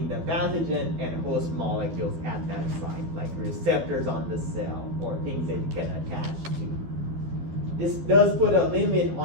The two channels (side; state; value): left; late; 12 ms